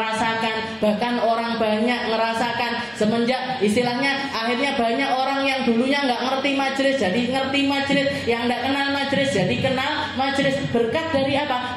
bahkan orang banyak ngerasakan semenjak istilahnya akhirnya banyak orang yang dulunya nggak ngerti majelis jadi ngerti majelis, yang nggak kenal majelis jadi kenal majelis. Berkat dari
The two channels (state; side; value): identical; both; correlation 1.00